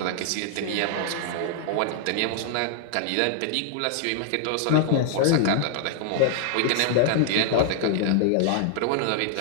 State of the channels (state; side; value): different; both; correlation -0.01